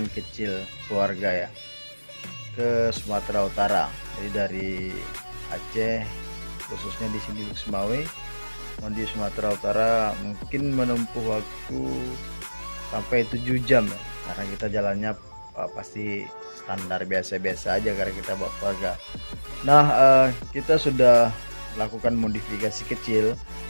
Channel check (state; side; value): inverted; both; correlation -1.00